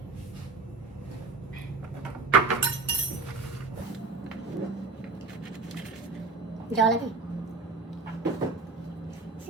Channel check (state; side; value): quieter; left; 3.9 dB